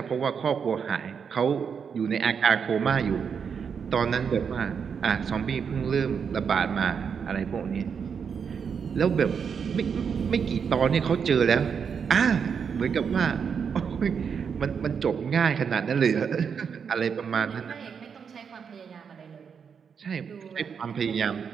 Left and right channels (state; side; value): quieter; left; 6.7 dB